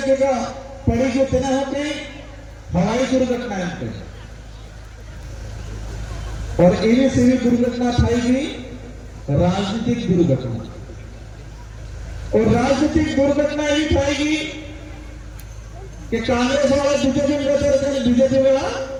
पड़ी जो तेना हो गई हवाई दुर्घटना इनके, और इन्हें से भी दुर्घटना थाई राजनीतिक दुर्घटना, और राजनीतिक दुर्घटना ही थाई कि कांग्रेस वाला बीजेपी में रहते हैं, बीजेपी वाला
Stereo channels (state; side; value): identical; both; correlation 1.00